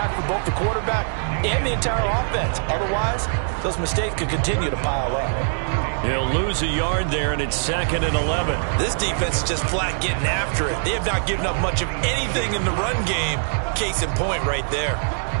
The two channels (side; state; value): left; silent; digital silence